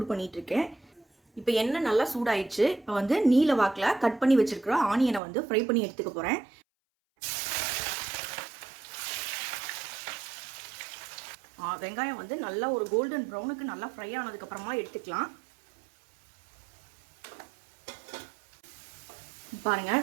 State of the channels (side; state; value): left; drops out; at 5.2 s